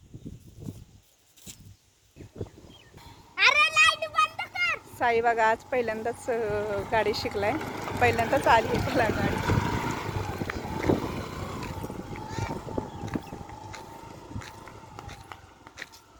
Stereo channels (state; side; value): identical; both; correlation 1.00